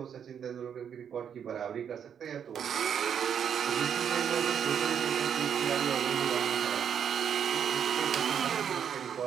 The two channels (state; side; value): quieter; left; 8.2 dB